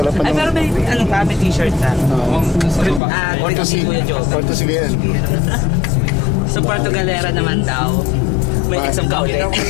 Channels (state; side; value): drops out; right; at 3.0 s